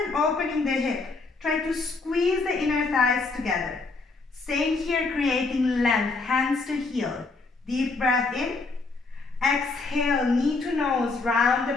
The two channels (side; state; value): right; quieter; 3.8 dB